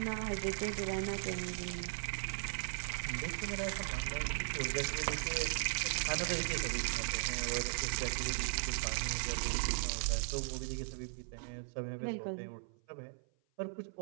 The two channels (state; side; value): silent; left; 53 dB below the other